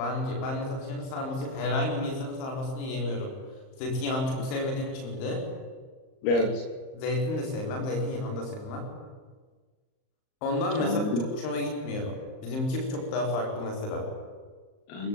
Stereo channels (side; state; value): right; late; 38 ms